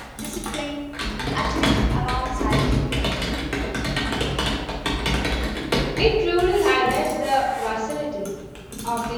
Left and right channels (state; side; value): identical; both; correlation 1.00